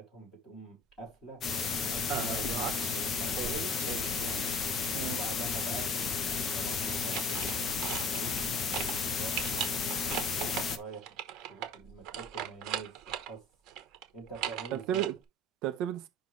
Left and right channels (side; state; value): both; normal; correlation 0.47